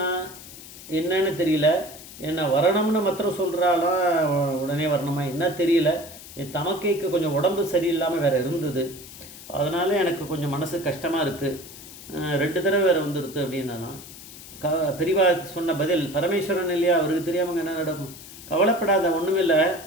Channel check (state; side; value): noise; left; hiss, 16 dB below the sound